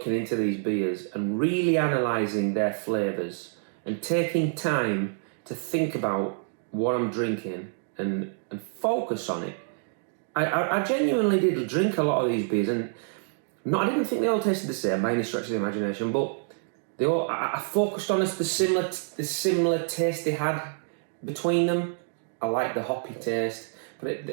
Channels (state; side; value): silent; left; digital silence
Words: into these beers and really analysing their flavours and taking time to think about what I'm drinking and focus on it, I genuinely did drink a lot of these beers, and I didn't think they all tasted the same by any stretch of the imagination, but I focused on the similar taste they had between them. I liked the hoppy taste.